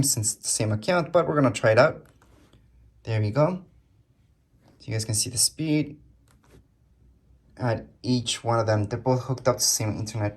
since it's the same account, but we're gonna try it out. There we go. So you guys can see the speed at each one of them. They're both hooked up to the same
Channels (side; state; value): both; identical; correlation 1.00